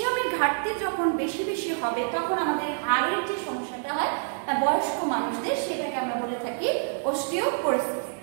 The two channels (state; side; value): silent; left; digital silence